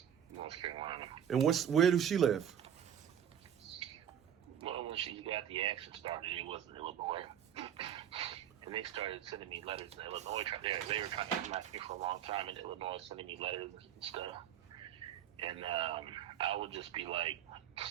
North Carolina. And where does she live? Well, when she got the action started, it was in Illinois. And they started sending me letters in Illinois. They were trying to contact me for a long time in Illinois, sending me letters and stuff. And I would just be like,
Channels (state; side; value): quieter; left; 9.5 dB